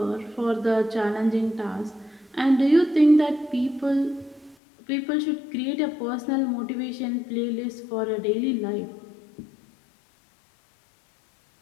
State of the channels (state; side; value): drops out; right; at 4.5 s